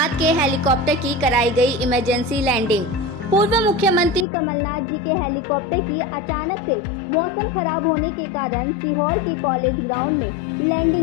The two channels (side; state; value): right; drops out; at 4.2 s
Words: के हेलीकॉप्टर की कराई गई इमरजेंसी लैंडिंग। पूर्व मुख्यमंत्री कमलनाथ जी के हेलीकॉप्टर की अचानक से मौसम खराब होने के कारण सीहोर के कॉलेज ग्राउंड में